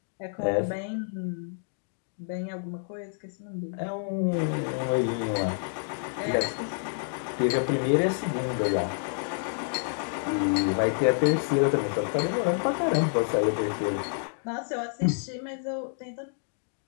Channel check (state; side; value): silent; right; digital silence